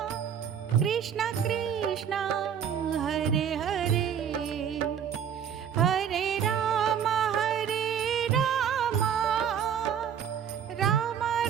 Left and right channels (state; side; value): quieter; left; 8.3 dB